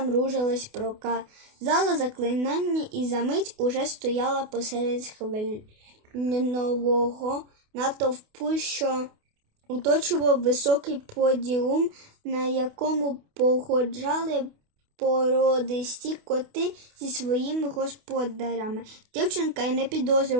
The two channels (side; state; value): left; late; 28 ms